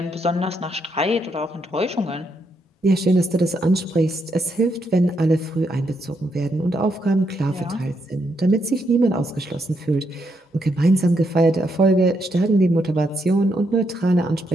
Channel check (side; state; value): both; normal; correlation 0.78